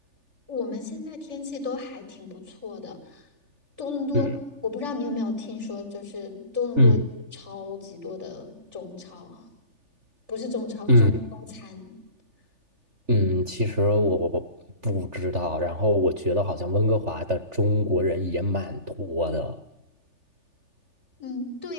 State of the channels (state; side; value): late; left; 3.4 ms